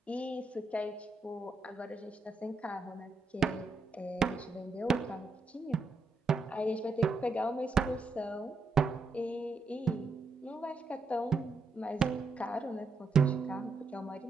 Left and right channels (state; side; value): quieter; left; 3.5 dB